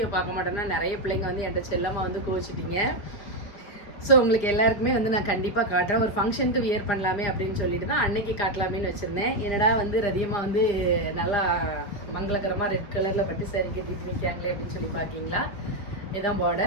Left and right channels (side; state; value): right; late; 4.8 ms